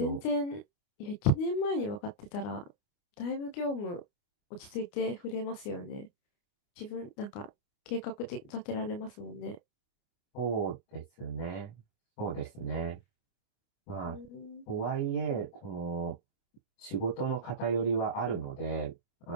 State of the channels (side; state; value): right; late; 29 ms